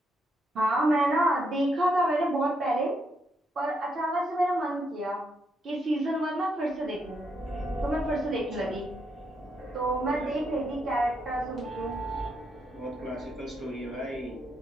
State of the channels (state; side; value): normal; both; correlation 0.78